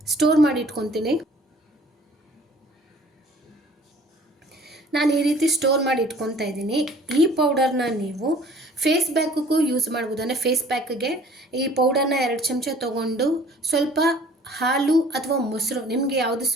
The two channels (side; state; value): both; normal; correlation 0.52